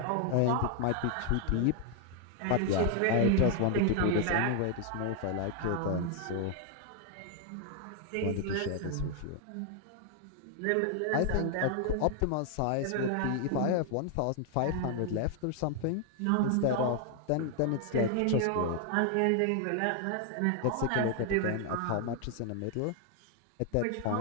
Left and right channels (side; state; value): both; different; correlation 0.00